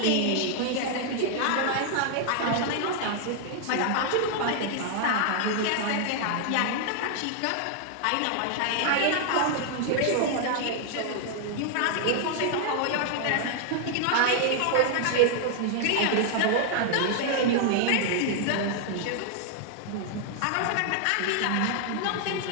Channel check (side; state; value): both; different; correlation 0.00